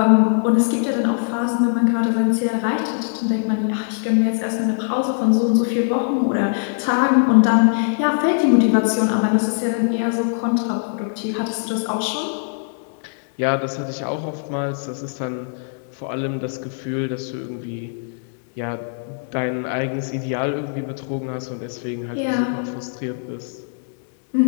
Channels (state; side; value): silent; right; digital silence